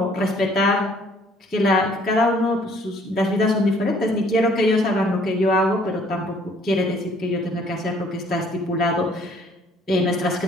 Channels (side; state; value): both; normal; correlation 0.60